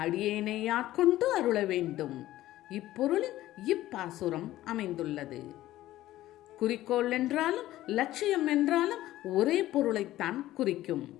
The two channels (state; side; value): quieter; right; 15.0 dB